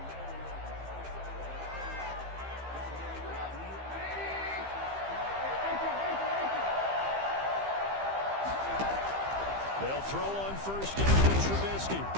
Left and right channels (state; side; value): late; left; 15 ms